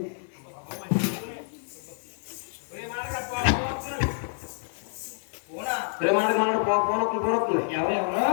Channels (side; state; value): right; silent; 59 dB below the other